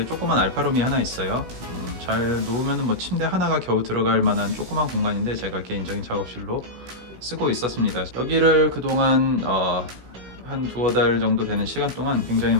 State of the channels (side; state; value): left; late; 16 ms